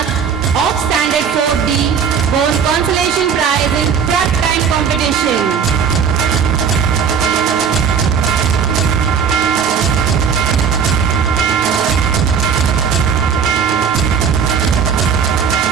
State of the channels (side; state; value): left; quieter; 6.8 dB